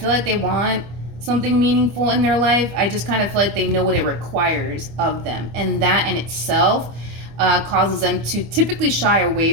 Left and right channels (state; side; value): late; left; 25 ms